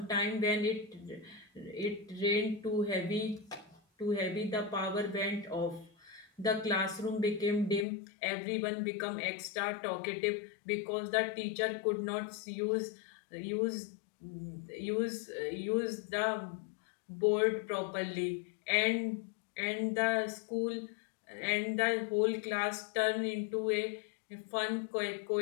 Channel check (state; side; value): drops out; right; at 7.9 s